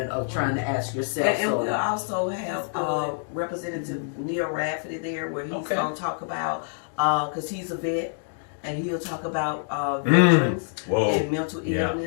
of trying to ask yourself. And So- we'll also have That's good. Representative Neil Rafferty there, where he's Okay. going to talk about, because he's a vet, and he'll talk about veterans Whoa. and mental Yeah.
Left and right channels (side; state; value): right; silent; digital silence